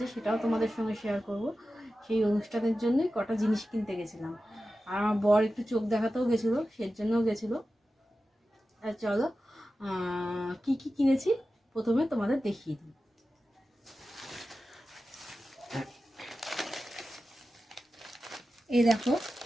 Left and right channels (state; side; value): normal; both; correlation 0.94